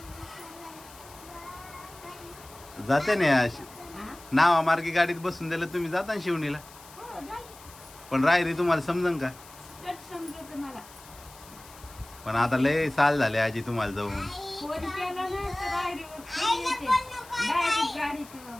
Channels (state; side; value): noise; left; hiss, 20 dB below the sound